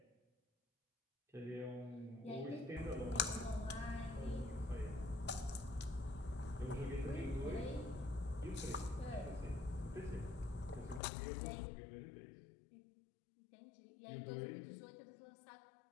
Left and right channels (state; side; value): drops out; right; at 11.0 s